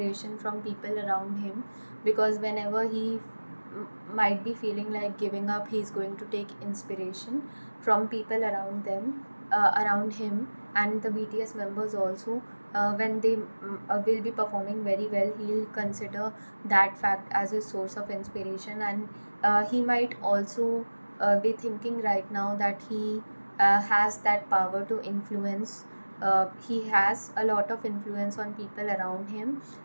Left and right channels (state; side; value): inverted; both; correlation -1.00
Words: from people around him, because whenever he might be feeling like giving up, he's going to take inspiration from people around him. And the BTS members also, when they will be performing very well, he'll consider that fact as a source of inspiration. And he might also be thinking right now that he has that power to influence. He has a lot of influence on people around him